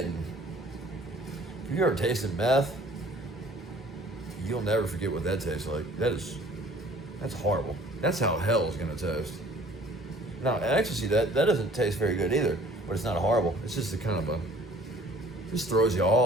If you ever tasted meth, you'll never forget what that tastes like. That's horrible. That's how hell is going to taste. Now, ecstasy, that doesn't taste very good either, but it's not horrible. It's just a kind of just throws you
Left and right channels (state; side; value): normal; both; correlation 0.53